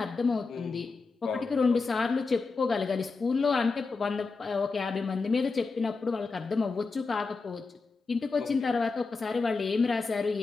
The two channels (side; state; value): right; quieter; 4.3 dB